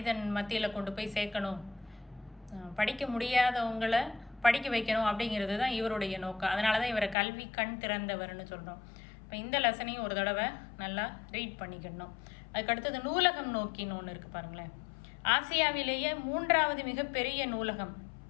மத்தியில் கொண்டு போய் சேர்க்கணும், படிக்க முடியாதவங்களை படிக்க வைக்கணும் அப்படிங்கிறது தான் இவருடைய நோக்கம். அதனால தான் இவரை கல்வி கண் திறந்தவர்னு சொல்கிறோம். இப்போ இந்த லெசனையும் ஒரு தடவை நல்லா ரீட் பண்ணிக்கணும். அதுக்கடுத்தது நூலகம் நோக்கின்னு ஒன்று இருக்குது பாருங்களேன். ஆசியாவிலேயே 3வது மிகப்பெரிய நூலகம்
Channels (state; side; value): drops out; right; at 7.2 s